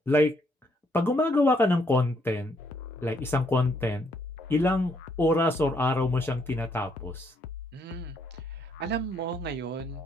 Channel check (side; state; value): both; normal; correlation 0.71